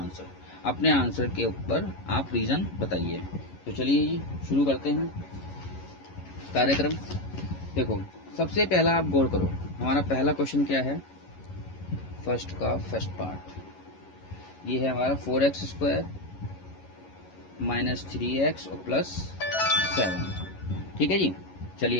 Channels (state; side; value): late; right; 11 ms